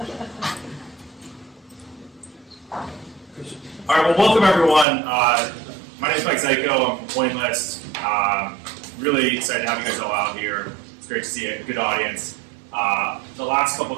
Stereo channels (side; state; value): left; drops out; at 4.9 s